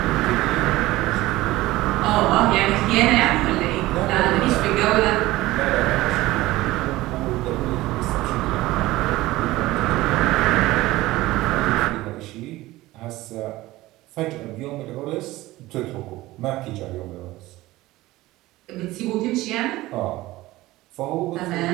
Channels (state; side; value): quieter; left; 18.0 dB